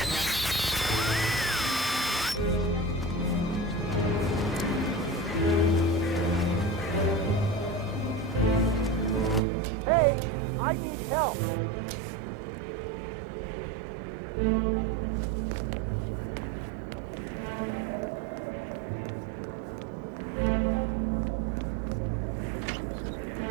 Hey, I need help.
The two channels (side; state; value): left; drops out; at 9.4 s